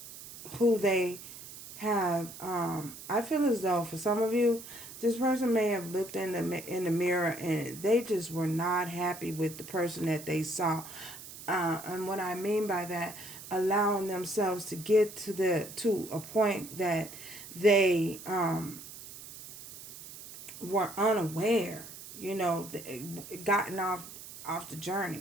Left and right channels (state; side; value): noise; right; hiss, 14 dB below the sound